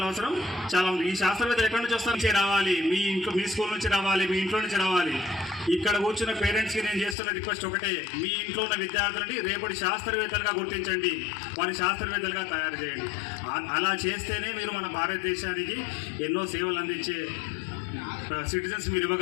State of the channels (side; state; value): right; drops out; at 7.2 s